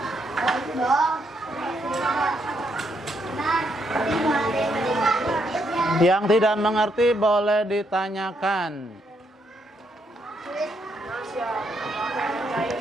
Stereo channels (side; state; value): both; normal; correlation 0.76